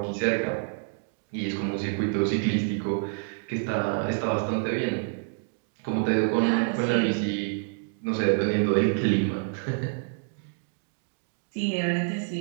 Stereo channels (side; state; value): left; silent; 60 dB below the other